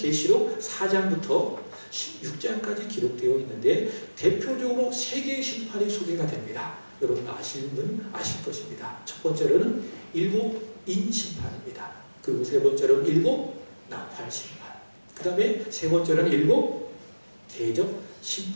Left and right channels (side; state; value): both; inverted; correlation -1.00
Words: 4장부터 16장까지 기록되어 있는데 대표적으로 세 개의 심판이 소개가 됩니다. 여러분 아시는 분 아실 것입니다. 첫 번째로는 일곱인 심판입니다. 그리고 세 번째로는 일곱 나팔 심판. 그 다음에 세 번째로는 일곱 대접